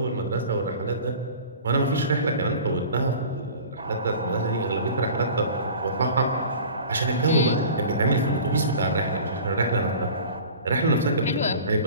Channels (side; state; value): both; inverted; correlation -0.41